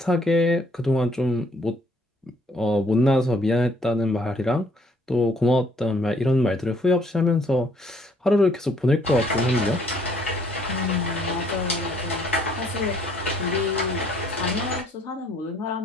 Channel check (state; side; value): normal; both; correlation 0.64